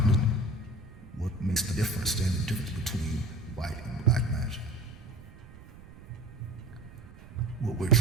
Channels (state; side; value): noise; right; rumble, 19 dB below the sound